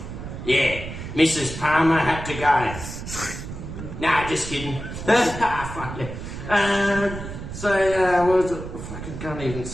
Yeah, Mrs. Palmer had to go. Nah, just kidding. Fuck yeah. What was it? I fucking can't even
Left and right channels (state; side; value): noise; right; rumble, 9 dB below the sound